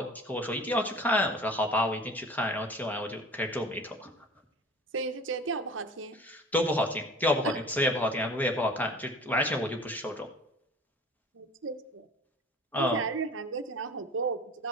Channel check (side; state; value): both; normal; correlation 0.43